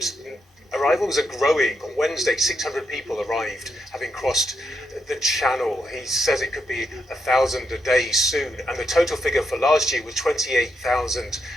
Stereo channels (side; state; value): both; normal; correlation 0.82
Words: arrivals are growing. On Wednesday, 600 people arrived, having crossed the channel. He says it could be 1,000 a day soon, and the total figure for last year was 28,000